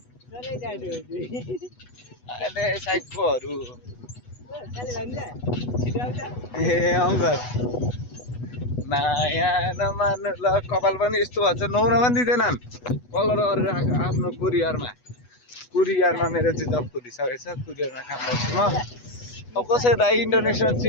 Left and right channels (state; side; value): late; right; 8.1 ms